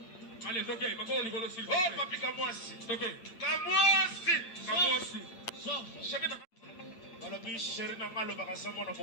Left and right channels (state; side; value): late; right; 8.8 ms